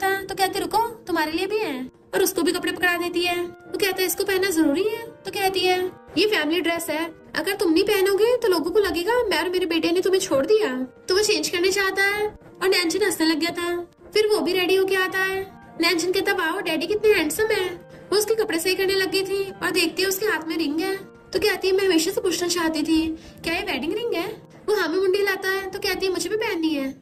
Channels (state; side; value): identical; both; correlation 1.00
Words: तो कहते रुको तुम्हारे लिए भी है, और उसको भी कपड़े पकड़ा देती है। वो कहता है इसको पहनना जरूरी है। तो कहती है ये फैमिली ड्रेस है, अगर तुम नहीं पहनोगे तो लोगों को लगेगा मैं और मेरे बेटे ने तुम्हें छोड़ दिया। तो वो चेंज करने चाहता है और नैनचिन हंसने लग गया था। फिर वो भी रेडी होके आता है। नैनचिन कहता वाह डैडी कितने हैंडसम है। वो उसके कपड़े सही करने लग गई थी और देखती है उसके हाथ में रिंग है। तो कहती है मैं हमेशा से पूछना चाहती थी क्या ये वेडिंग रिंग है। वो हाँ में मुंडी लाता है। तो कहती है मुझे भी पहननी है।